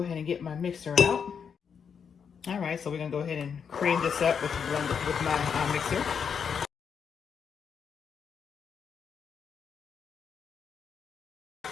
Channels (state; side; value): quieter; right; 6.8 dB